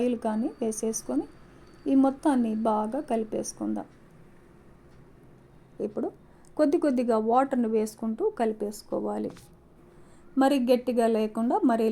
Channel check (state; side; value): identical; both; correlation 1.00